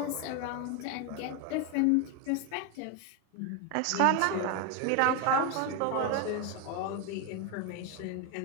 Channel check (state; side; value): different; both; correlation 0.02